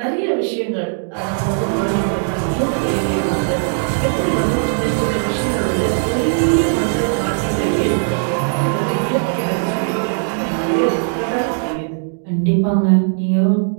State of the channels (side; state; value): left; silent; digital silence